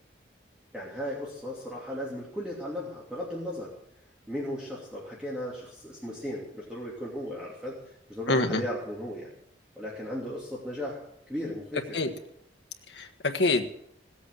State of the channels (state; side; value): normal; both; correlation 0.35